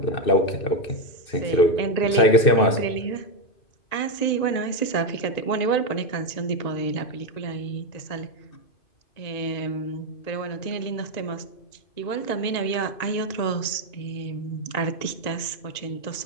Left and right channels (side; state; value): right; late; 2.5 ms